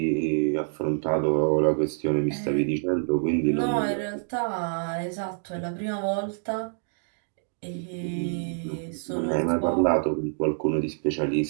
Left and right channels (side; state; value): left; silent; digital silence